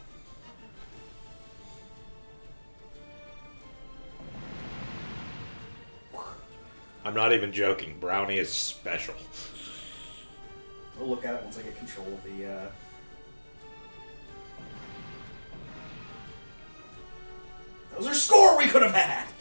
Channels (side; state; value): both; inverted; correlation -1.00